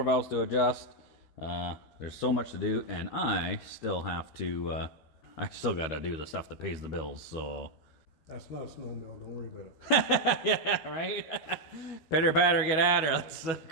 valves to adjust. There's so much to do, and I still have to, I still got to do the stuff that pays the bills, so. That's not a snowmobile, don't worry about it. Yeah, right? Pitter patter, get at her. Let's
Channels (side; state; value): right; late; 13 ms